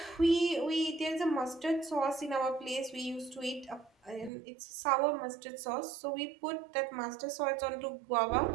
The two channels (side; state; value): left; drops out; at 4.3 s